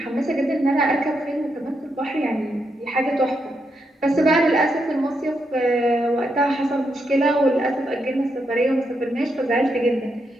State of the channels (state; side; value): normal; both; correlation 0.81